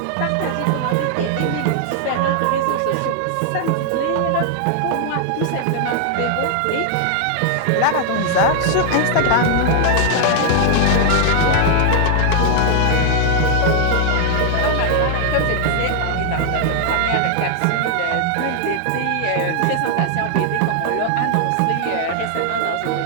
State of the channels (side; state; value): both; different; correlation 0.00